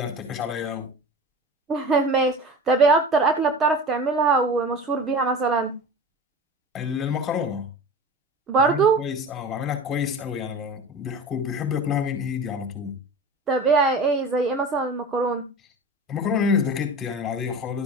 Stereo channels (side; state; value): both; normal; correlation 0.34